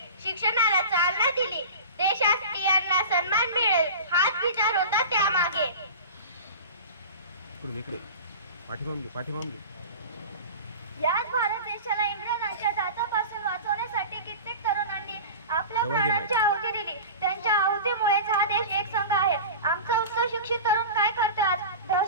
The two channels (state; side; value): inverted; both; correlation -0.33